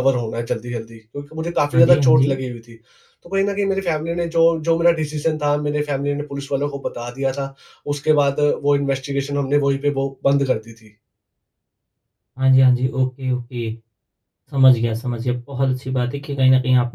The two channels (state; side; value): identical; both; correlation 1.00